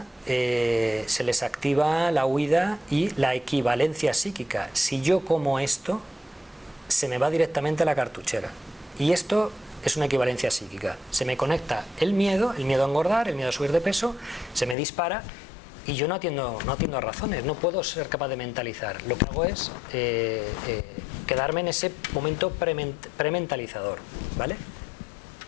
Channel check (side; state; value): right; drops out; at 14.8 s